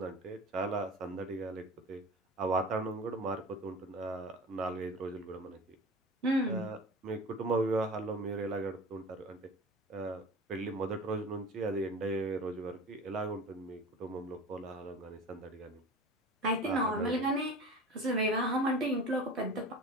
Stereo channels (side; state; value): both; normal; correlation 0.36